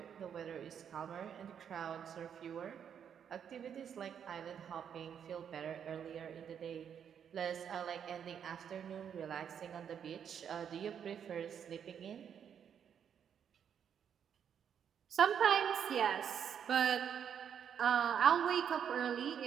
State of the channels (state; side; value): quieter; left; 8.2 dB